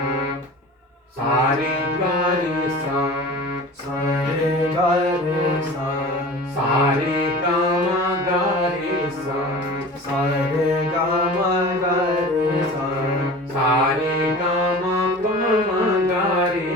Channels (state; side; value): normal; both; correlation 0.38